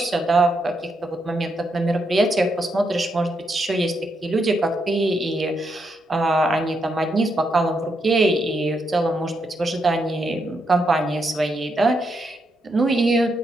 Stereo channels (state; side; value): normal; both; correlation 0.80